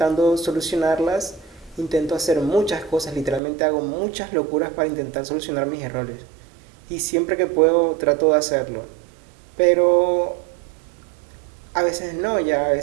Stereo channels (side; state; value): left; drops out; at 3.4 s